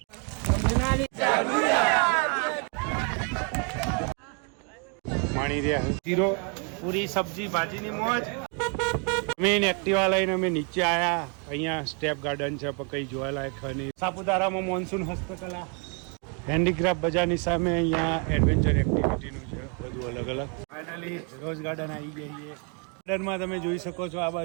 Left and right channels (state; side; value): quieter; left; 37.0 dB